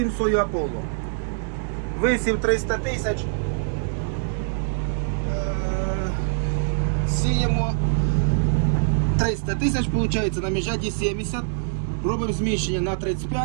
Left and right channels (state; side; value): silent; left; 63 dB below the other